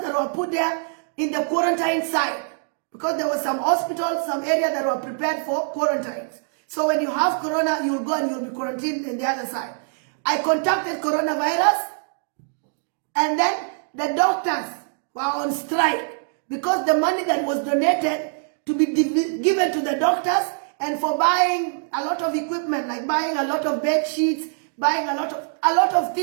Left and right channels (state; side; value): silent; left; digital silence